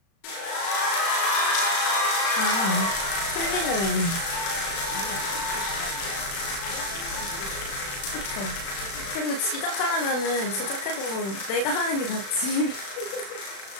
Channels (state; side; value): late; right; 36 ms